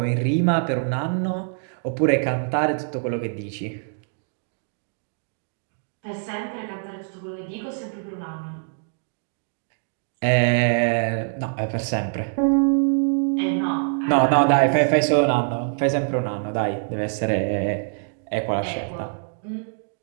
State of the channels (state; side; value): silent; left; digital silence